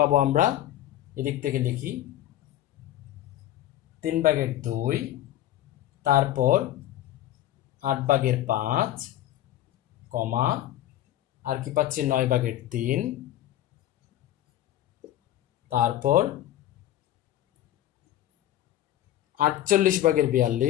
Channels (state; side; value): quieter; right; 13.2 dB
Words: আমরা? এদিক থেকে লিখি 3/2, তারপর 8/5, কমা, আর কি পাচ্ছি 9/3, তারপর